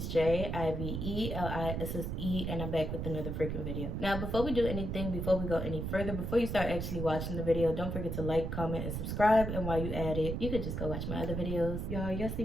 J, IVELISSE, and I'm back with another freaking video. Now, before we do anything, before we go any further, before you start actually watching the video, don't forget to like, comment, and subscribe. And while you at it, you could just go watch my other videos. Y'all see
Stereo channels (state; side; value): noise; right; rumble, 3 dB below the sound